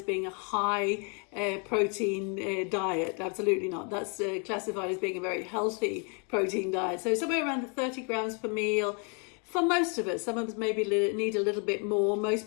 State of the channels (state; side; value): quieter; right; 37.3 dB